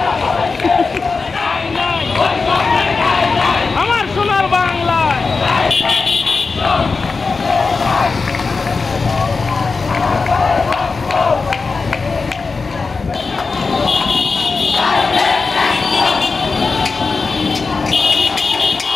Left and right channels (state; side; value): quieter; right; 4.4 dB